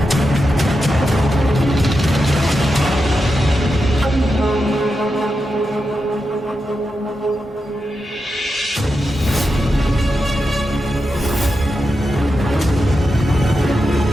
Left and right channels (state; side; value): normal; both; correlation 0.88